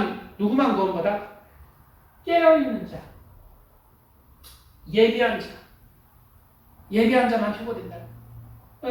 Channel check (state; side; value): identical; both; correlation 1.00